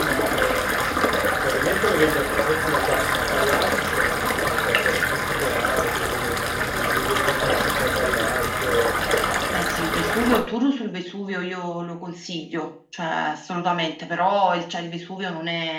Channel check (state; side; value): identical; both; correlation 1.00